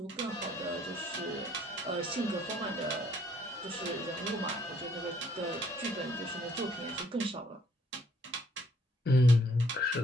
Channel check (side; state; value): both; normal; correlation 0.65